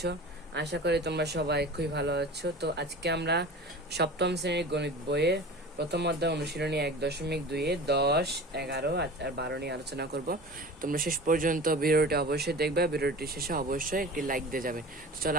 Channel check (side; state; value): both; normal; correlation 0.37